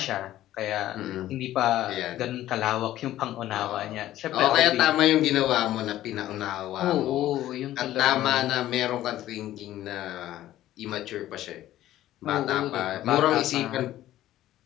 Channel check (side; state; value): right; quieter; 13.8 dB